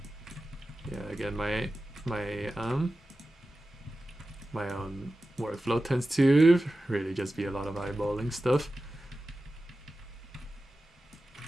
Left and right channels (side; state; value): both; normal; correlation 0.94